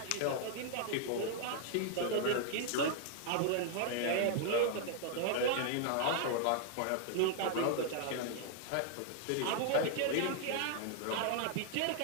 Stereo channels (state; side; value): different; both; correlation 0.00